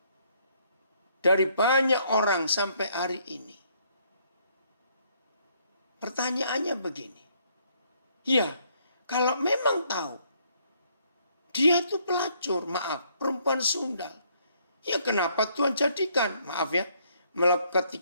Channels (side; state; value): both; inverted; correlation -0.68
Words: dari banyak orang sampai hari ini. Pertanyaannya begini. Ya, kalau memang tahu Dia itu pelacur, maaf, perempuan sundal. Ya kenapa Tuhan jadikan, maaf ya,